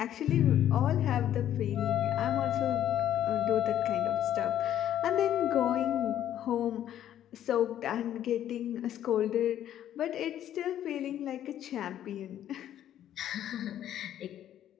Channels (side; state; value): right; quieter; 11.2 dB